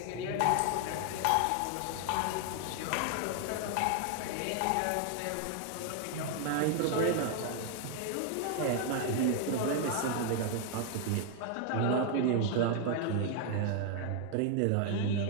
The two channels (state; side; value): different; both; correlation 0.00